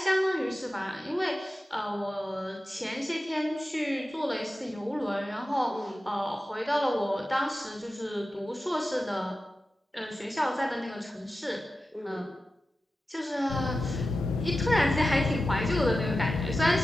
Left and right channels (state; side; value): normal; both; correlation 0.93